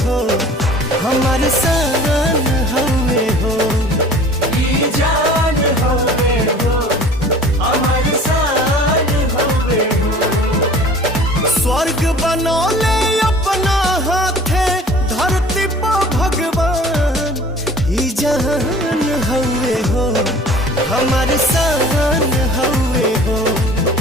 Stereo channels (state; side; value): normal; both; correlation 0.47